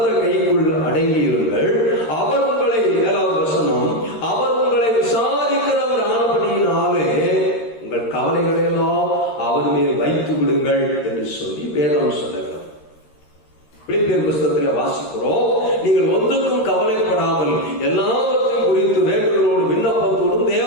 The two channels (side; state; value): right; late; 13 ms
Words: கைக்குள் அடங்கியிருங்கள். அவர் உங்களை, 7வது வசனம், அவர் உங்களை விசாரிக்கிறவர் ஆனபடியினாலே உங்கள் கவலைகளை எல்லாம் அவர் மேல் வைத்து விடுங்கள் என்று சொல்லி வேதம் சொல்லுகிறது. பிலிப்பியர் புத்தகத்தில் வாசிக்கிறோம், நீங்கள் ஒன்றுக்கும் கவலைப்படாமல் எல்லாவற்றையும் குறித்து வேண்டுதலோடு விண்ணப்பத்தோடும்